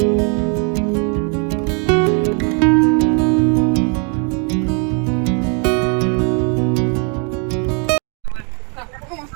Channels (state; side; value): quieter; left; 38.5 dB